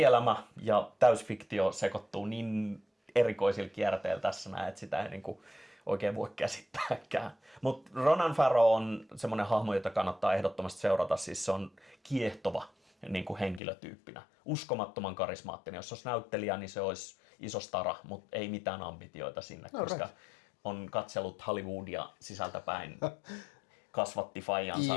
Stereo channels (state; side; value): drops out; right; at 13.6 s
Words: ja täysfiktio sekoittuu niin erikoisilla kierteillä tässä näin, että sitä ei niinku oikein voi käsittääkään. Mutta Ronan Farrow on semmoinen hahmo, jota kannattaa ehdottomasti seurata. Siis se on kiehtova niin kuin henkilötyyppinä. Uskomattoman karismaattinen. Jos olisi näyttelijä, niin se olisi iso stara, mutta ei mitään ambitioita sinne, koska on katsellut Hollywoodia sisältäpäin. Kasvatti faijansa,